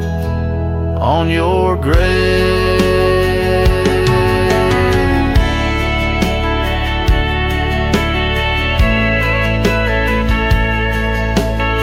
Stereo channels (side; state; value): both; identical; correlation 1.00